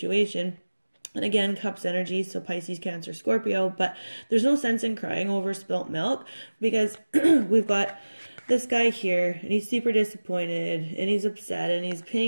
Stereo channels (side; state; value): both; inverted; correlation -1.00